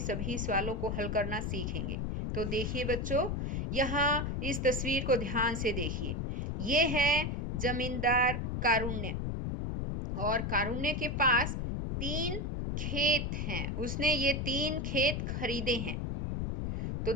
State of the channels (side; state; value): left; noise; rumble, 1 dB below the sound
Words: सवालों को हल करना सीखेंगे। तो देखिए बच्चों, यहाँ इस तस्वीर को ध्यान से देखिए। ये है जमींदार कारुण्य और कारुण्य के पास 3 खेत हैं। उसने ये 3 खेत खरीदे हैं। तो